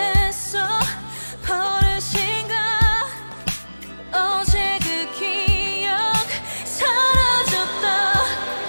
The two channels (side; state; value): both; inverted; correlation -1.00